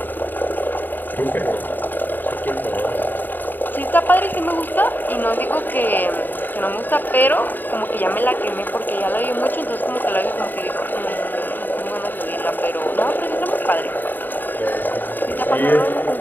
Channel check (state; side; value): late; right; 0.090 ms